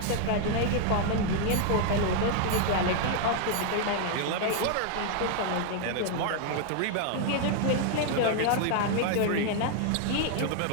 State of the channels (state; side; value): different; both; correlation 0.00